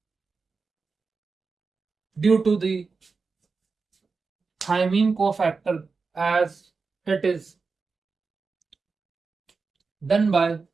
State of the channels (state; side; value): quieter; left; 4.6 dB